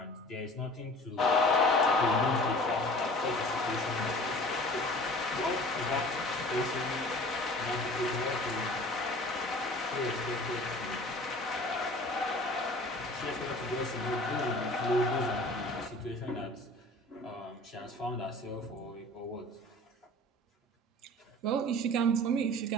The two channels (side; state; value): both; normal; correlation 0.45